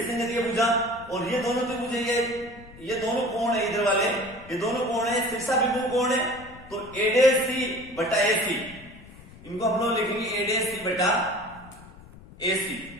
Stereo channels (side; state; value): left; noise; rumble, 20 dB below the sound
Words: संगत ये भुजा। और ये दोनों त्रिभुज ये दोनों कोण है, इधर वाले ये दोनों कोण है, शीर्षा बिंदु कोण है तो A', बटा AC इनको हम लोग लिखेंगे A', बटा AC।